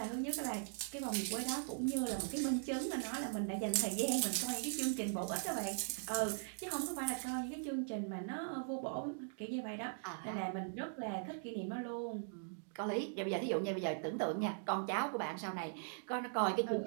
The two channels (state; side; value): silent; left; digital silence